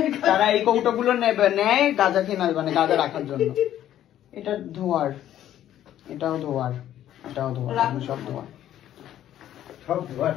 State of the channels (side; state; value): right; quieter; 11.8 dB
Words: তারা এই কৌটো গুলো নেয় গাঁজা খেয়ে, মানে গাঁজা রাখার জন্য। এটা ধোয়ার, এটাও ধোয়ার, এটাও ধোয়ার, সব ধোয়ার, সব